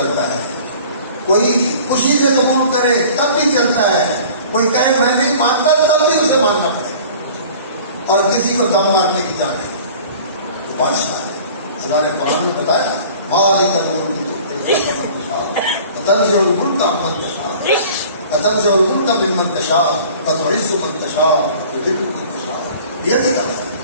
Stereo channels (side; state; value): both; inverted; correlation -0.46